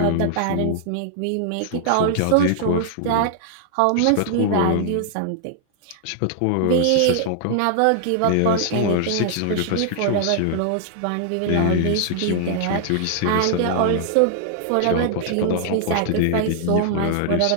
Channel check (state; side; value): different; both; correlation -0.01